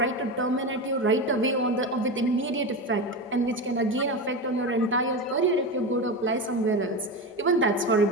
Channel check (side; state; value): both; normal; correlation 0.20